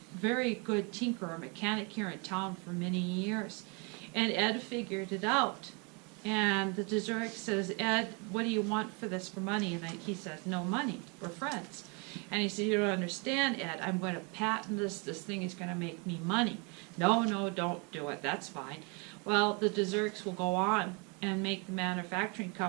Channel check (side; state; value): left; quieter; 32.5 dB